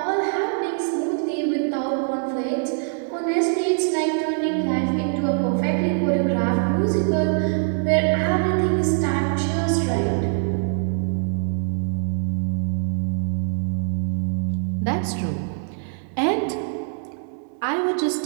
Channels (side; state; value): left; silent; 63 dB below the other